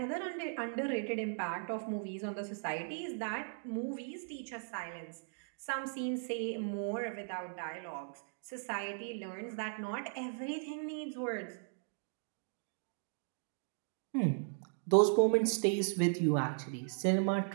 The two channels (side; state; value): left; silent; digital silence